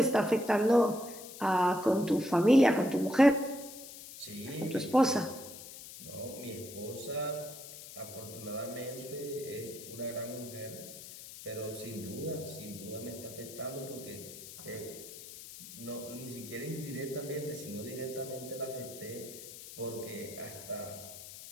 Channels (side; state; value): left; noise; hiss, 13 dB below the sound